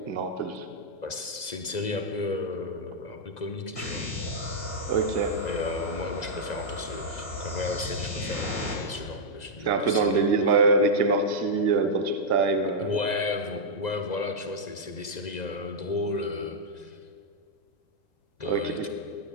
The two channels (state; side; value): late; right; 2.0 ms